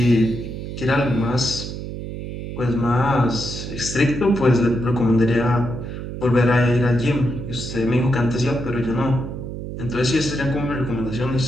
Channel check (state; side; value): noise; right; hum, 7 dB below the sound